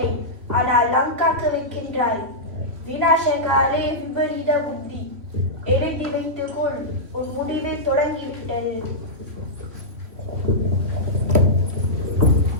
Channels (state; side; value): late; left; 3.1 ms